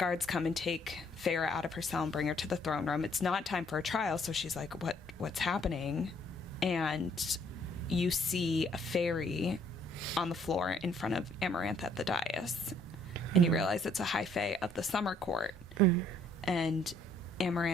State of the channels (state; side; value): normal; both; correlation 0.64